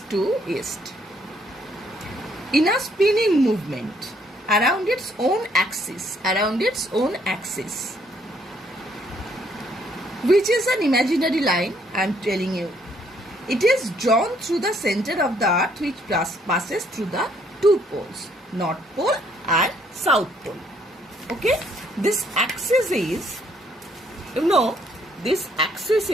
to east. In a spinning movement around its own axis, which is an imaginary line, I am telling you. It is drawn through the center of the earth, which passes through the two poles, North Pole and South Pole. Okay, this axis is,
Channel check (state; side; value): normal; both; correlation 0.67